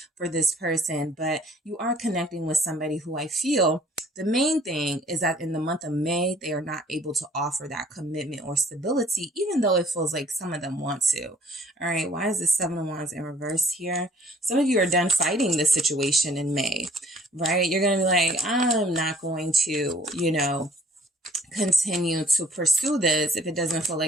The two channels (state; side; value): normal; both; correlation 0.57